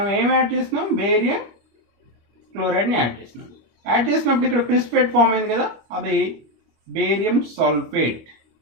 ఏం యాడ్ చేసినాం? బేరియం క్లోరైడ్ని యాడ్ చేసినాం. యాడ్ చేసినప్పుడు ఇక్కడ ప్రిసిపిటేట్ ఫామ్ అయింది కదా, అది బేరియం సల్ఫేట్.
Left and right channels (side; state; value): left; late; 25 ms